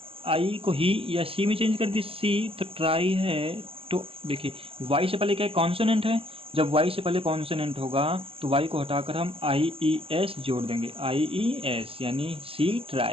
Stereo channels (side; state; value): left; late; 0.27 ms